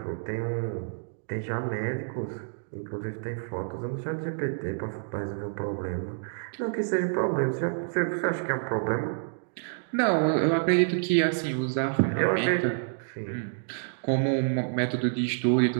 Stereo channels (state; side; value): silent; left; digital silence